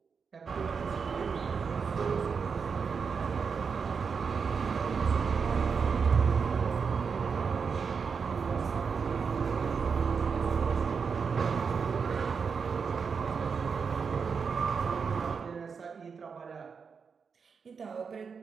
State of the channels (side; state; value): left; quieter; 5.8 dB